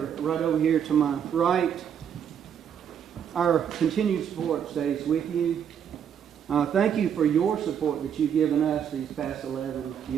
right over here to my right. Our continued support stays with you. Thank you for your support that you've given us these past 11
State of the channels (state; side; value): quieter; left; 8.4 dB